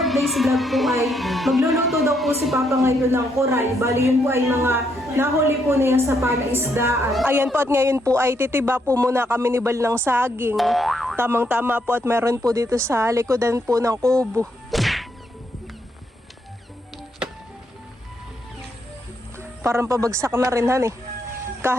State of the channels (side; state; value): both; normal; correlation 0.76